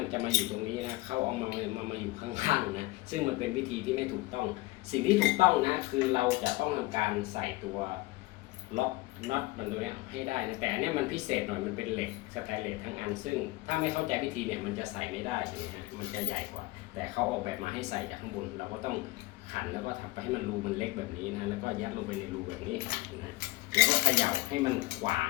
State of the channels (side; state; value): right; quieter; 20.6 dB